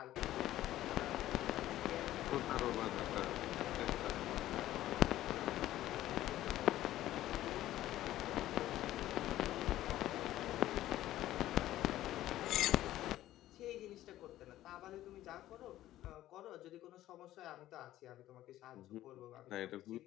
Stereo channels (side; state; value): right; quieter; 14.1 dB